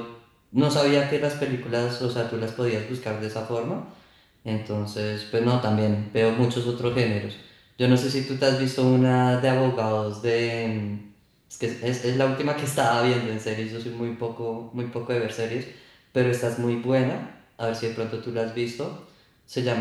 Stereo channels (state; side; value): identical; both; correlation 1.00